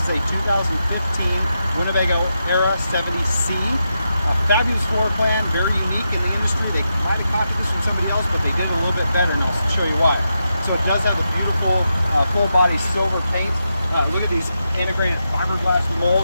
a 2015 Winnebago Era 70C. A fabulous floor plan, very unique in the industry. They might have copied this from somebody else, but they did it a little bit better, and I'll show you why. So it does have the beautiful full body silver paint. Look at these integrated fiberglass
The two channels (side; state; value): both; inverted; correlation -0.86